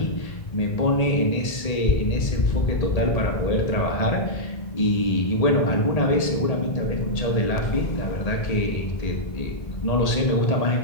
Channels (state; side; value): late; right; 1.8 ms